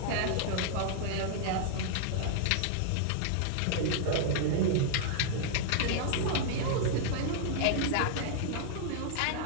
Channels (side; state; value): both; different; correlation -0.01